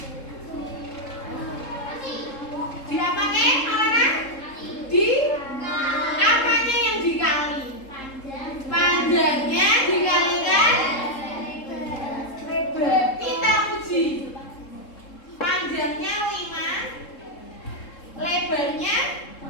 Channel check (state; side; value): late; right; 3.7 ms